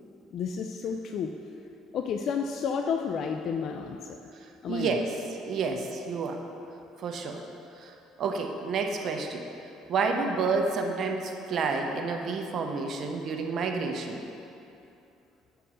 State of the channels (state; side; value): normal; both; correlation 0.58